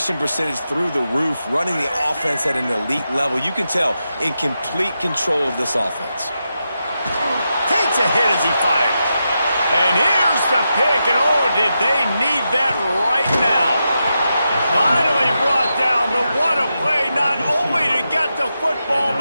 percentage through the roof, running the offense at an elite level. You can tell in complete control of this offense. Takes a hit as he fires. And here's the pick, and oh, did they need that right now. Finally brought down, but what a play, not only to get the football,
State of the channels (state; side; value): inverted; both; correlation -0.87